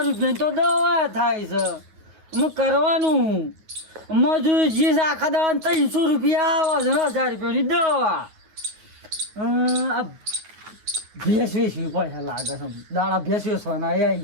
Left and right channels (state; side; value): late; left; 9.4 ms